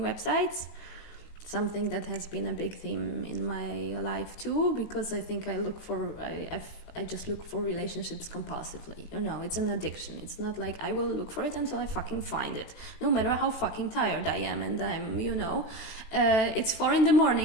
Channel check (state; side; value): late; right; 18 ms